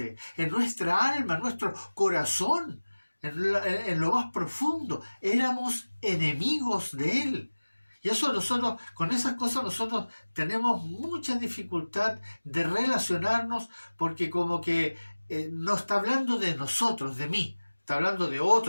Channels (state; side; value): inverted; both; correlation -1.00